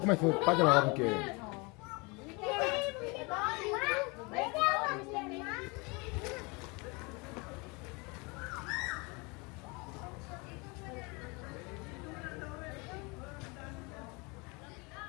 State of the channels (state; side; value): quieter; right; 28.4 dB